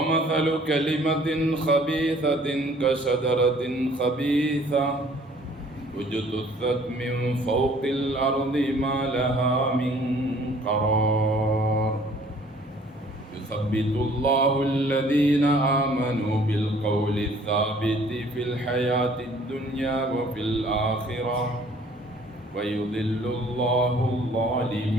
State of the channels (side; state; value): both; normal; correlation 0.56